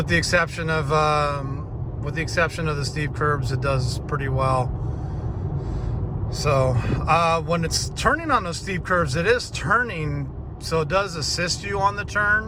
the exception of the steep curbs, it does pretty well. So when it's turning on those steep curves, it is turning, so it does assist you on the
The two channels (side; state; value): both; identical; correlation 1.00